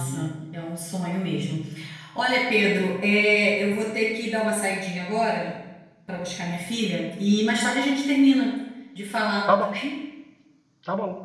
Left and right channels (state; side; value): identical; both; correlation 1.00